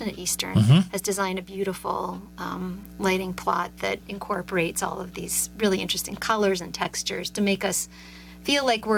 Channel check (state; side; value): identical; both; correlation 1.00